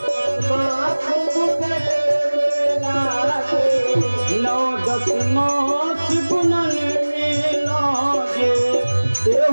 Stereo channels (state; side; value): inverted; both; correlation -1.00